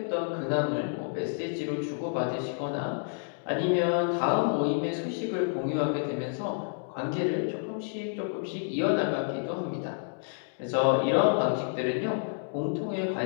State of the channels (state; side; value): silent; right; digital silence